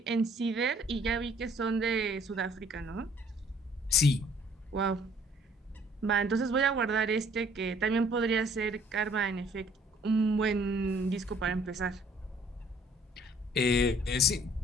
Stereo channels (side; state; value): both; normal; correlation 0.59